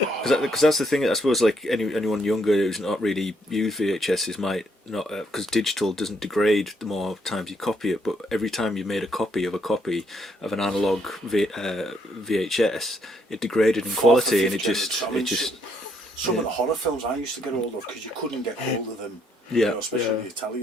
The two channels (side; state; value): both; normal; correlation 0.72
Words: Because that's the thing. I suppose, like anyone younger who's not really used VHSs might not, because digital doesn't degrade the more times you copy it. But every time you made a copy of an analog VHS, it degraded in Fourth or quality, and fifth generation. Some of the horror films I used to get hold of, because you couldn't get hold of them. Yeah. You know, especially the